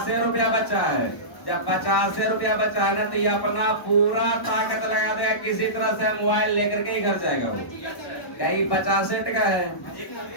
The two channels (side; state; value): right; late; 1.1 ms